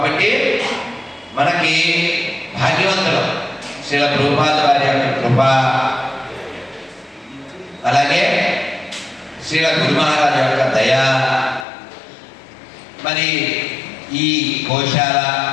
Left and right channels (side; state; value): right; drops out; at 11.7 s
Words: మనకి భాగ్యవంతులు శ్రీల ప్రభుపాద వారి యొక్క కృప, అలాగే శ్రీల గురు మహారాజు యొక్క దయ. మరి ఈ గోశాల,